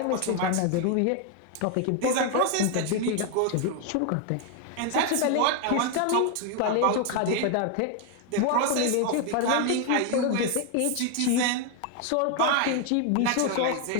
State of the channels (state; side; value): different; both; correlation 0.01